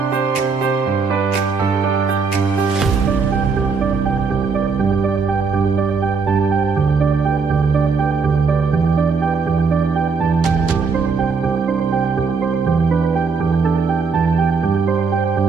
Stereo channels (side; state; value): left; quieter; 5.0 dB